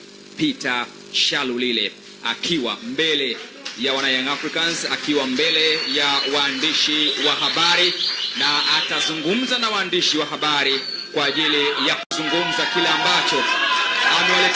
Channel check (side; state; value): both; identical; correlation 1.00